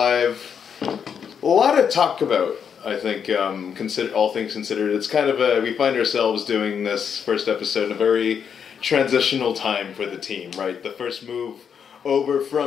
A lot to talk about, I think, all things considered. It's kind of we find ourselves doing this first episode in a very transitional time for the team, right? The first move over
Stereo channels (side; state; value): right; quieter; 7.3 dB